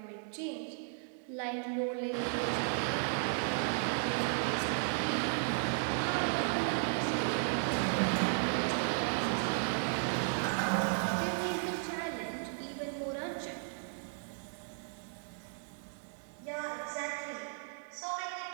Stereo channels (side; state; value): left; silent; digital silence